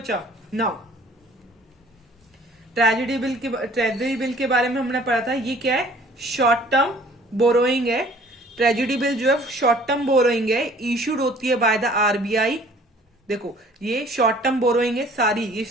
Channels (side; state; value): both; normal; correlation 0.53